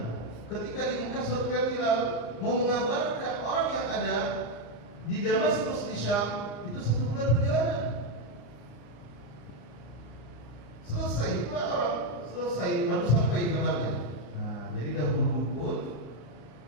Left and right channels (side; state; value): right; late; 34 ms